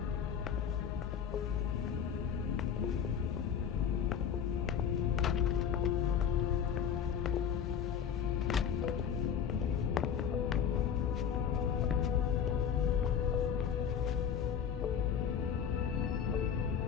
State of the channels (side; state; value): right; quieter; 7.8 dB